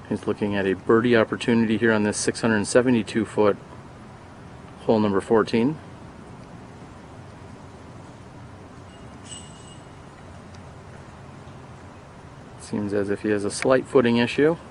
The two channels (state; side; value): identical; both; correlation 1.00